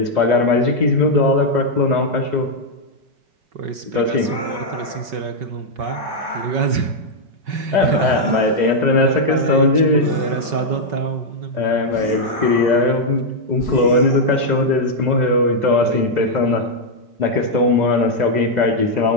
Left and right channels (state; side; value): late; left; 5.3 ms